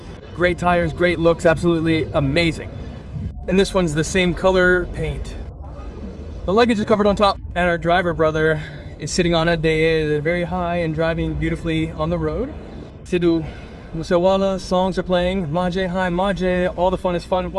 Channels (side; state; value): both; identical; correlation 1.00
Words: Great tires, great looks, absolutely amazing. And this one's the same color paint. The luggage is covered on top, and our driver brother is sitting on it. They are very high and driving beautifully on the road. Sidhu Musewala, songs are playing, Maje, hi Maje, all the fun is fun